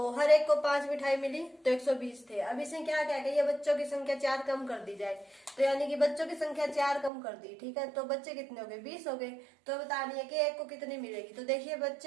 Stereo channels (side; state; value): left; drops out; at 7.1 s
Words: हर एक को 5 मिठाई मिली तो 120 थे। अब इसे क्या क्या कहिए, बच्चों की संख्या 4 कम कर दी जाए, तो यानी कि बच्चों की संख्या 4 कम कर दी, ठीक है। तो बच्चे कितने हो गए, 20 हो गए। तो बतानी है कि एक को कितनी मिलेगी। तो देखिए